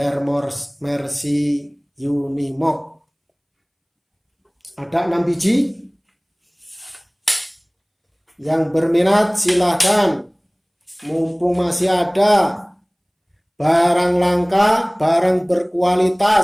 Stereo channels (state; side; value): identical; both; correlation 1.00